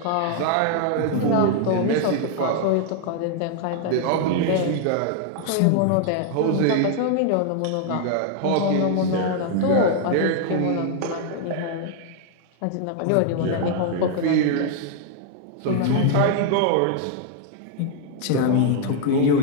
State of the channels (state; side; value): different; both; correlation 0.00